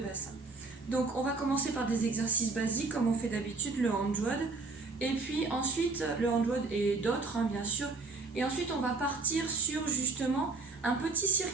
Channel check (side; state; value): left; quieter; 3.9 dB